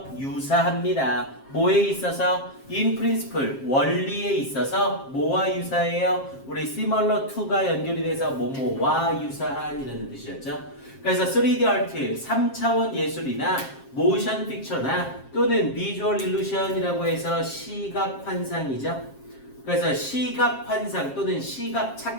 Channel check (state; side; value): late; right; 7.5 ms